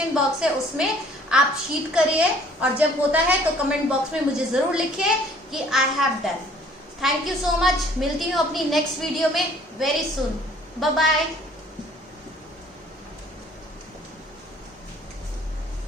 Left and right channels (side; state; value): both; normal; correlation 0.56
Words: बॉक्स है उसमें आप शीट करिए, और जब होता है तो कमेंट बॉक्स में मुझे जरूर लिखिए कि I have done. Thank you so much. मिलती हूँ अपनी नेक्स्ट वीडियो में वेरी सून। Bye bye.